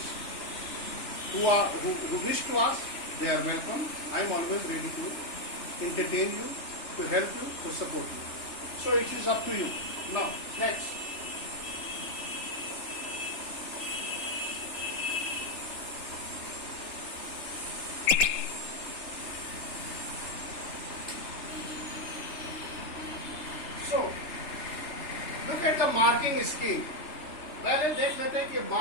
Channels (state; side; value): late; right; 3.3 ms